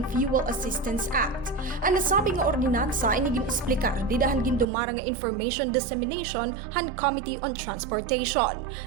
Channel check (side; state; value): left; drops out; at 4.7 s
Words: Fuel Assistance Act. Ang nasabi nga ordinansa ay gin-esplikar didahan gindumara nga information dissemination han Committee on Transportation.